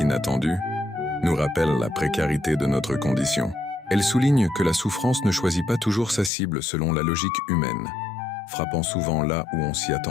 nous rappellent la précarité de notre condition. Elles soulignent que la souffrance ne choisit pas toujours sa cible selon la logique humaine, frappant souvent là où on s'y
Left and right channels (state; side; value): drops out; right; at 6.3 s